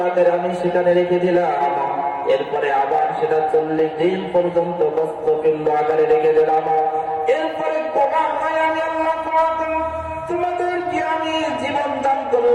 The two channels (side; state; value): both; identical; correlation 1.00